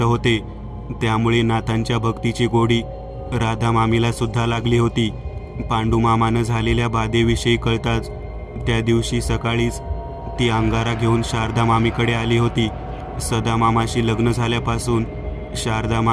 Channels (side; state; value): both; identical; correlation 1.00